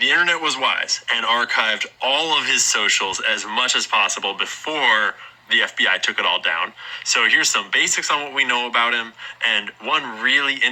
internet was wise and archived all of his socials as much as possible before the FBI took it all down. So here's some basics on what we know about him, and one really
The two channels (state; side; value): identical; both; correlation 1.00